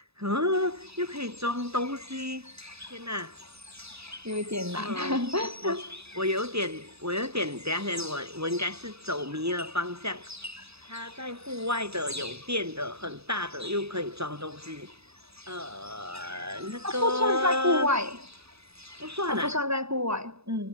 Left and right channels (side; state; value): left; late; 0.79 ms